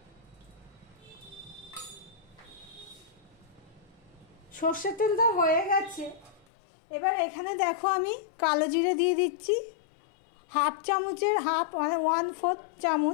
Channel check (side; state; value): right; drops out; at 6.5 s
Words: সর্ষের তেলটা হয়ে গেছে। এবার এখানে দেখো আমি কালো জিরে দিয়ে দিচ্ছি। হাফ চামচের হাফ, মানে 1/4